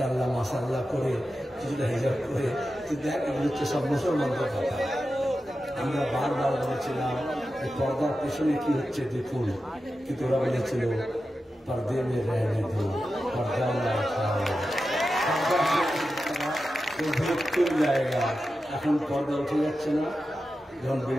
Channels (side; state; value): both; normal; correlation 0.91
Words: মাশাআল্লাহ করে, কিছুটা হিজাব করে। তুই দেখ, এগুলো হচ্ছে সব মুসলমানদের কথা। আমরা বারবার বলেছিলাম এই পর্দার পেছনে কি হচ্ছে দেখুন, কিন্তু ওরা বলেছিল পর্দে মে রহনে দো, পর্দা না উঠাও, জায়গা। এখন পর্দা উঠে যাচ্ছে না। যখন